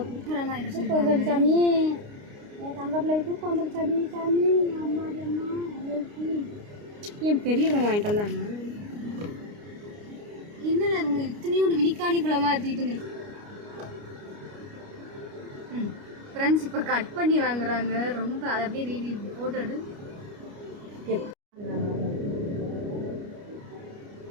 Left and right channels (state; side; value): late; left; 29 ms